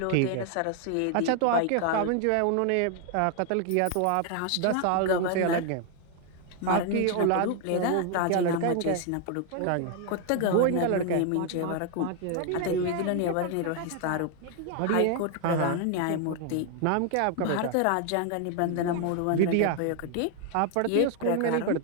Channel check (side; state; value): both; different; correlation 0.00